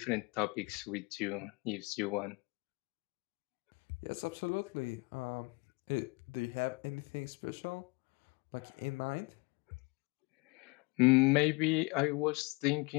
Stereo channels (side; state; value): right; quieter; 28.0 dB